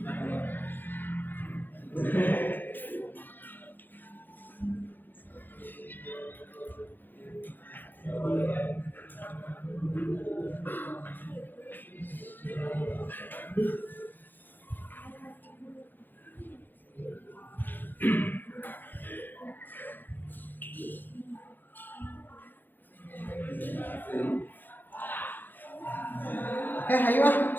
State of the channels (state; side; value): late; right; 0.089 ms